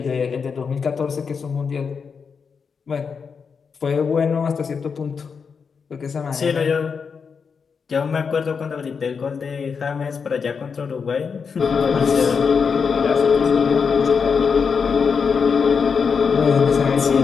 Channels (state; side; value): quieter; right; 5.8 dB